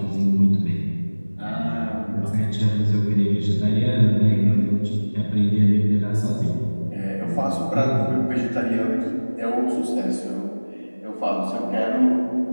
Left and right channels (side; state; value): both; inverted; correlation -1.00